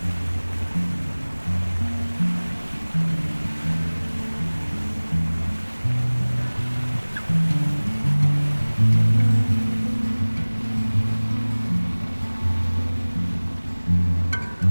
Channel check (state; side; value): inverted; both; correlation -1.00